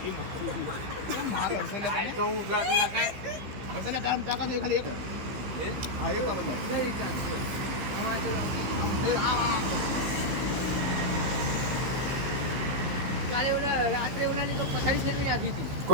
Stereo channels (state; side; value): late; left; 15 ms